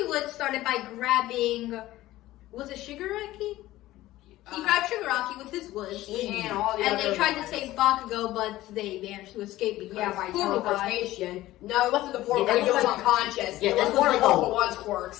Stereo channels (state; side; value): quieter; right; 16.2 dB